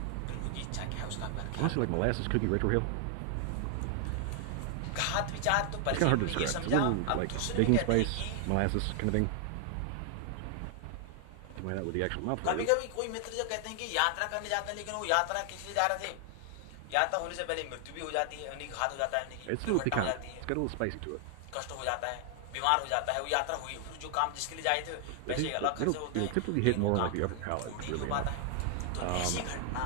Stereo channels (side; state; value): both; different; correlation 0.00